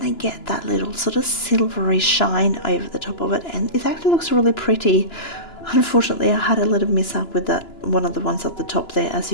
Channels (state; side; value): late; right; 2.9 ms